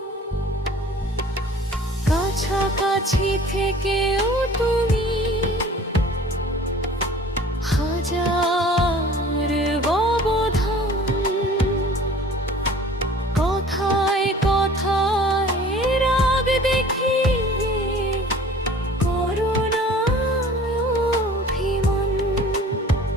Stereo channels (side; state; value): both; normal; correlation 0.47